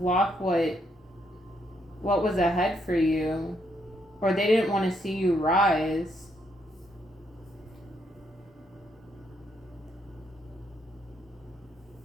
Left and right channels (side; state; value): both; normal; correlation 0.75